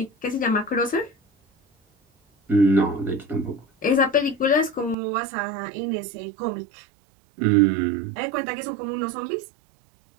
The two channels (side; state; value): left; drops out; at 5.0 s